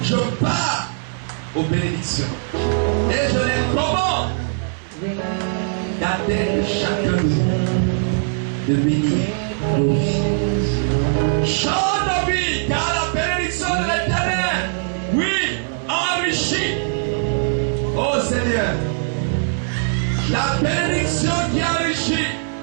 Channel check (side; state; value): left; silent; 58 dB below the other